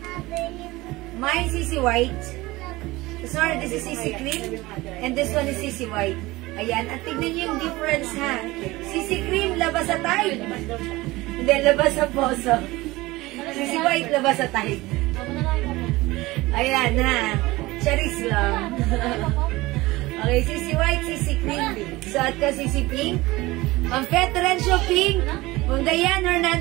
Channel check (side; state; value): left; quieter; 20.1 dB